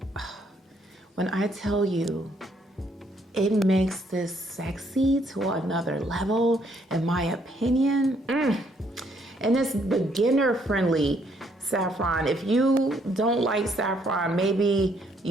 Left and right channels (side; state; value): both; normal; correlation 0.69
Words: When I tell you, it makes this sexy to another level, in my opinion. And it's beginner friendly saffron. If you don't like saffron, maybe